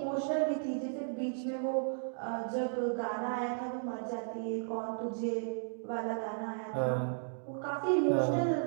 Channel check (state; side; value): silent; left; digital silence